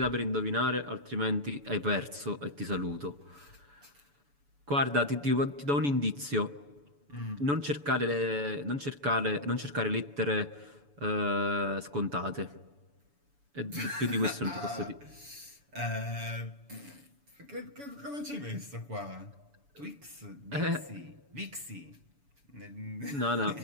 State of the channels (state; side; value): late; left; 7.0 ms